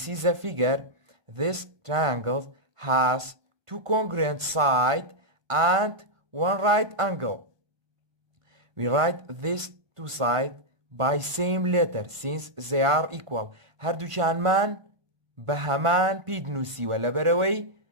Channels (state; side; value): late; left; 1.5 ms